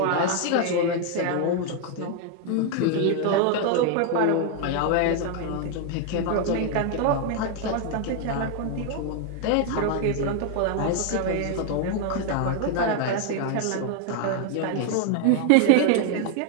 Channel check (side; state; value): both; different; correlation 0.00